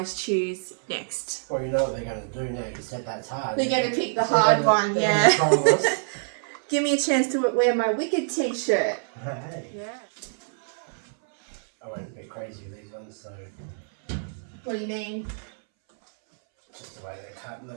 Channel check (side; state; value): left; silent; 61 dB below the other